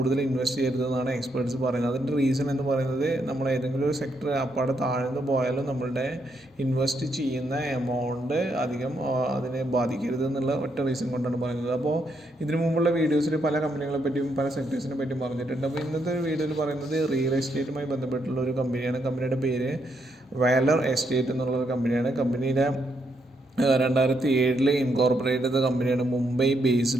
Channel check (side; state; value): both; normal; correlation 0.77